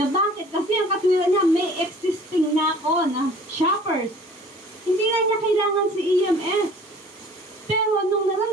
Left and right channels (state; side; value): normal; both; correlation 0.49